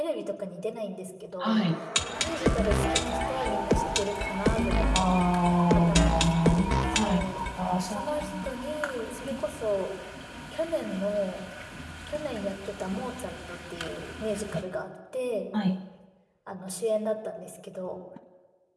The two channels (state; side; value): identical; both; correlation 1.00